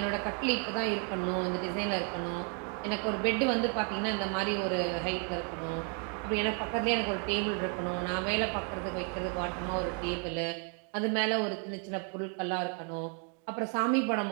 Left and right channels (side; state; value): left; quieter; 39.4 dB